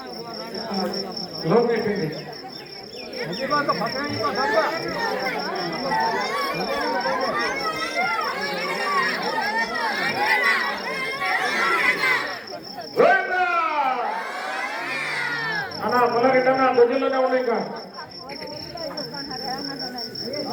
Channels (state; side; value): identical; both; correlation 1.00